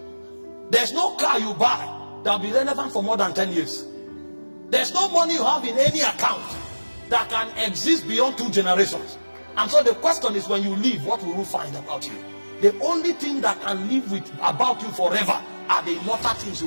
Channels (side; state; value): both; inverted; correlation -1.00